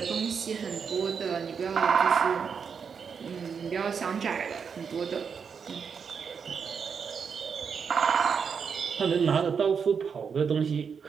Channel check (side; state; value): left; quieter; 6.4 dB